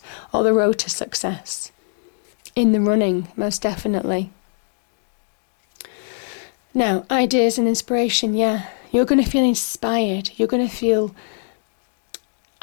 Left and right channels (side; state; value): right; silent; digital silence